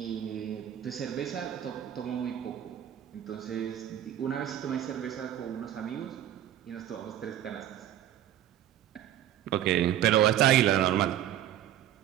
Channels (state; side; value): quieter; left; 11.5 dB